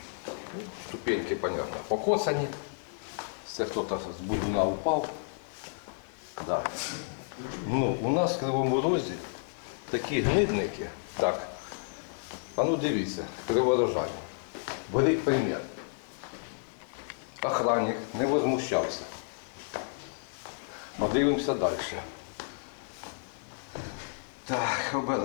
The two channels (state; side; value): silent; right; digital silence